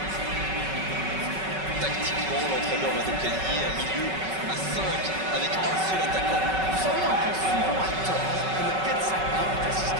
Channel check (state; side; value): late; left; 5.3 ms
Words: Tactiquement, l'entraîneur va donc aligner un milieu à 5 avec un seul attaquant. Vous savez, on pense souvent à tort que le 4-5-1 est un